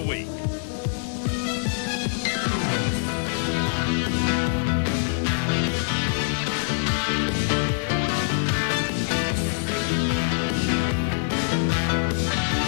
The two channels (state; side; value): silent; right; digital silence